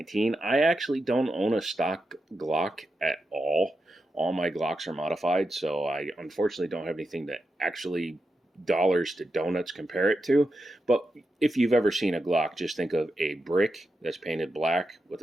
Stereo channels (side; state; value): both; normal; correlation 0.87